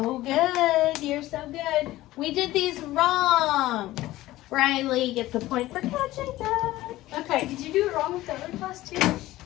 good. You're so good. We did these wrong. Riley gets a point for catching that. Okay. Did you do it wrong with the other class too?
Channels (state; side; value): quieter; right; 16.6 dB